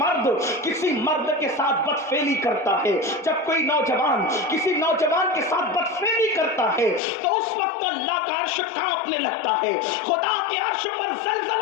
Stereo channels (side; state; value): right; drops out; at 7.0 s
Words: کسی مرد کے ساتھ بدفعلی کرتا ہے، جب کوئی نوجوان کسی نوجوان کے ساتھ بدفعلی کرتا ہے تو اس وقت اللہ کا عرش کانپنے لگتا ہے، خدا کے عرش پر